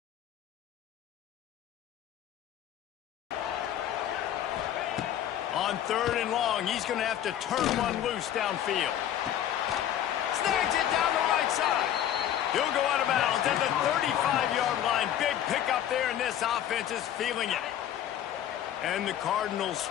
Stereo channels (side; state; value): right; quieter; 10.9 dB